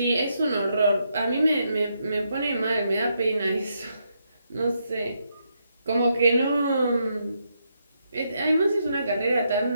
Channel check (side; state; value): both; inverted; correlation -0.79